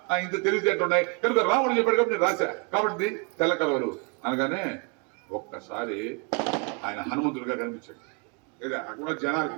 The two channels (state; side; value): quieter; left; 34.1 dB